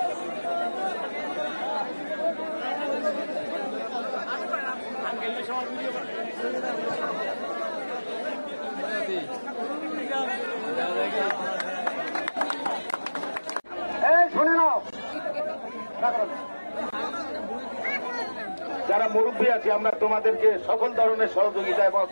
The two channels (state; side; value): inverted; both; correlation -1.00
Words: শুনে নাও, যারা মুরব্বী আছে আমরা তোমাদেরকে সকল ধরনের সহযোগিতা এবং